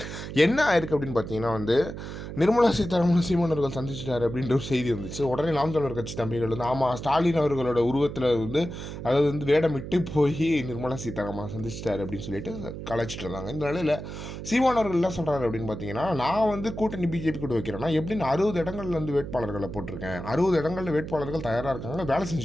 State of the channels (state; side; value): noise; right; hum, 9 dB below the sound